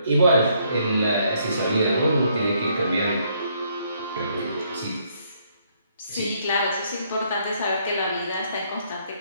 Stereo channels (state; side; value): inverted; both; correlation -0.70